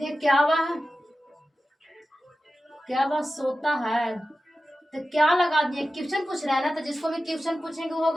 क्या वह सोता है, तो क्या लगा दिए? क्वेश्चन पूछ रहा है ना, तो जिसको भी क्वेश्चन पूछेंगे वो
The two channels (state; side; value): normal; both; correlation 0.94